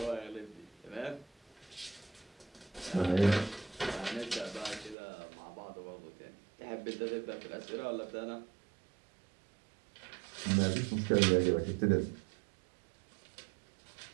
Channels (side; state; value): left; drops out; at 5.0 s